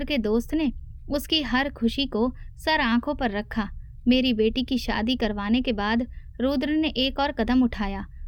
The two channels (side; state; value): both; identical; correlation 1.00